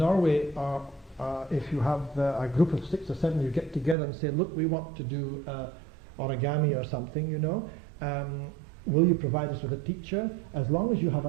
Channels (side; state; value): left; drops out; at 4.0 s